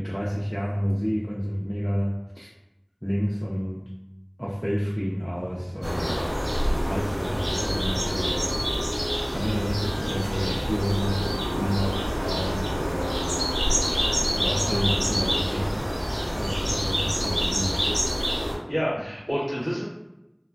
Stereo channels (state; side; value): identical; both; correlation 1.00